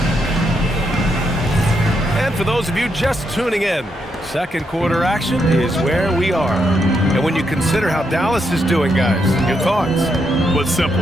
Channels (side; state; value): both; normal; correlation 0.80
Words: For those of you just tuning in, second quarter action is where we are. And when you consider how Dallas is doing, guys, your thoughts? Well, it's simple.